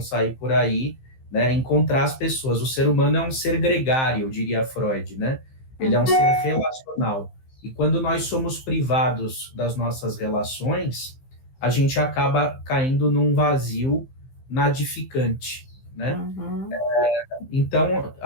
por aí, né? Encontrar as pessoas. O ser humano é um ser gregário, diria Freud, né? Ele é um ser relacional. E quando nós somos privados das nossas relações, a gente acaba caindo num vazio nadificante, né? Então,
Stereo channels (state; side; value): late; right; 15 ms